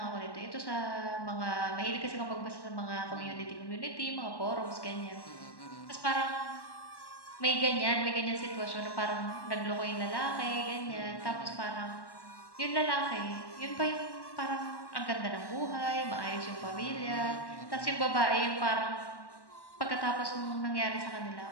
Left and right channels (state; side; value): late; right; 1.1 ms